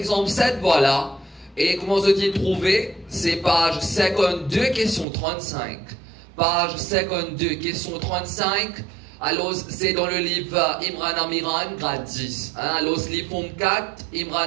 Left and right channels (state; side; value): drops out; left; at 5.1 s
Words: 7, voilà. Et comment se-t-il trouver? C'est page 52, question 35. Page 52, question 35. Alors, c'est dans le livre Imran Amiran, grade 10. Alors, livre forme 4,